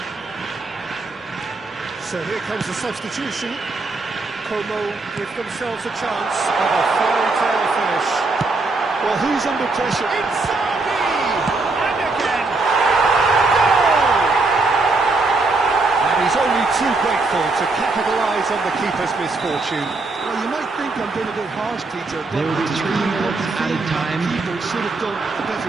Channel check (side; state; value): left; quieter; 3.5 dB